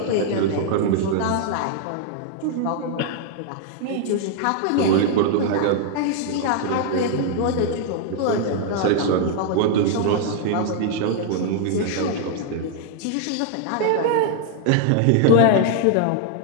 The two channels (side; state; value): both; different; correlation -0.01